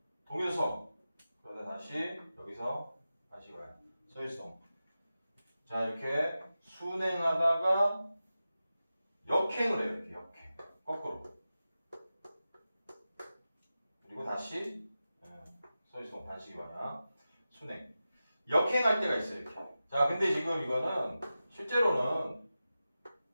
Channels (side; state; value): both; inverted; correlation -0.93